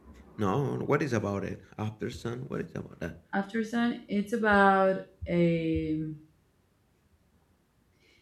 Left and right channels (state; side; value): identical; both; correlation 1.00